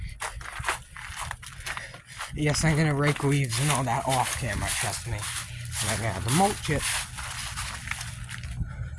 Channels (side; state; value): both; identical; correlation 1.00